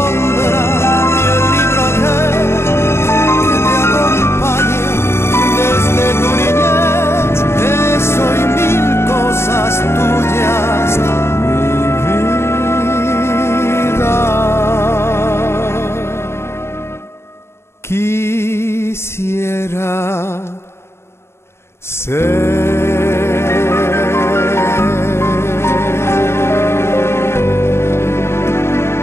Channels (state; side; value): late; right; 0.12 ms